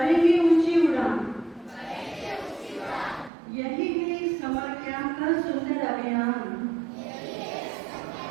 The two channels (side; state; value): left; drops out; at 3.3 s